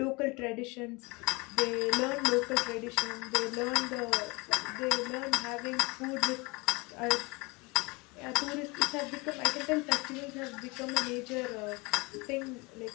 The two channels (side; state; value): right; quieter; 26.3 dB